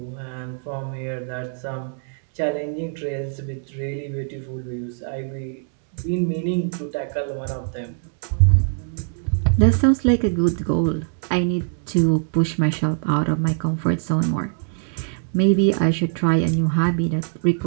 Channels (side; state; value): left; silent; digital silence